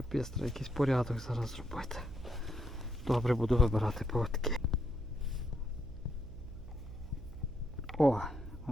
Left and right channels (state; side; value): noise; right; hum, 13 dB below the sound